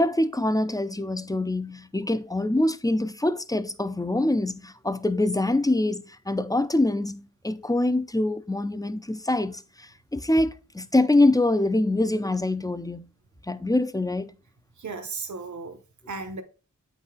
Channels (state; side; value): normal; both; correlation 0.88